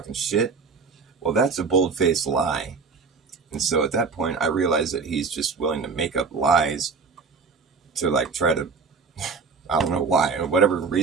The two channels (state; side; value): quieter; left; 4.8 dB